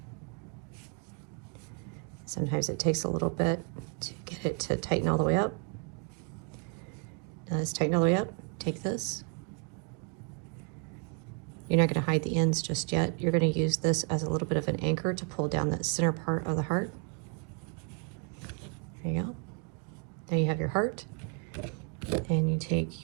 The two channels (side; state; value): left; quieter; 38.9 dB